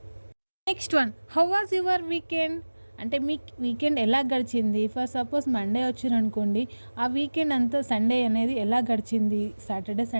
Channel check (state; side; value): inverted; both; correlation -1.00